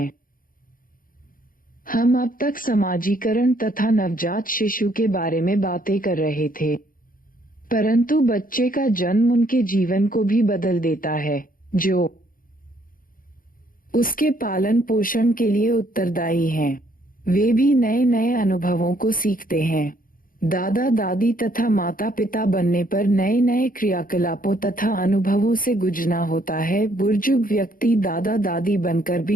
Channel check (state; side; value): late; right; 0.41 ms